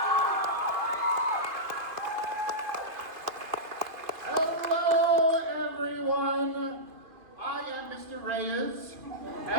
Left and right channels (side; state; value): left; late; 2.5 ms